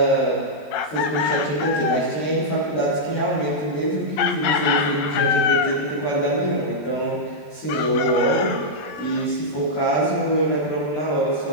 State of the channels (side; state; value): right; late; 21 ms